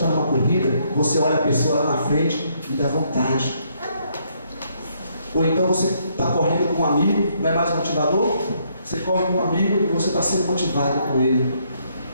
numa corrida, você olha a pessoa lá na frente e dá vontade. Ou então você está correndo com um amigo, não é mais motivador? Você corre com um amigo e você está sendo motivado com ele.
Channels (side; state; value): both; inverted; correlation -0.71